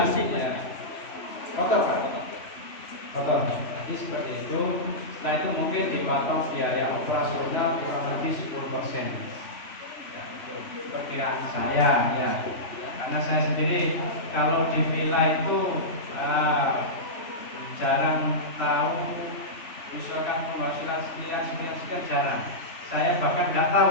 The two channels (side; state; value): right; late; 3.0 ms